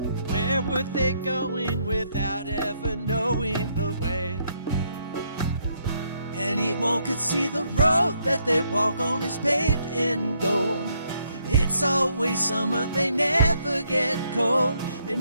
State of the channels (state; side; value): inverted; both; correlation -0.73